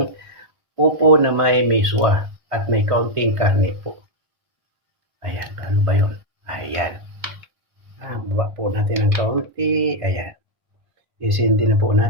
upo na may miswa at may kaunting karne po. Ayan, ano ba yun? Ayan. Buwa po natin ng kaunti. Ayan. Isindi na po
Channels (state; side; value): late; left; 1.5 ms